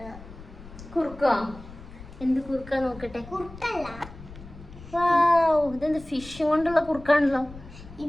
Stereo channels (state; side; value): noise; left; rumble, 17 dB below the sound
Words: കുറുക്കോ? എന്ത് കുറുക്കാ നോക്കട്ടെ. കുറുക്കല്ല, ഇതെന്ത് ഫിഷ് കൊണ്ടുള്ള കുറുക്കാണല്ലോ.